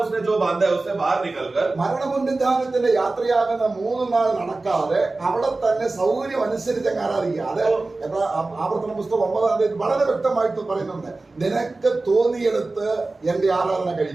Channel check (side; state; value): left; quieter; 3.3 dB